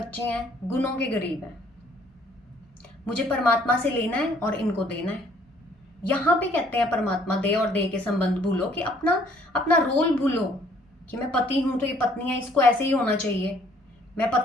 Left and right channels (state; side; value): normal; both; correlation 0.61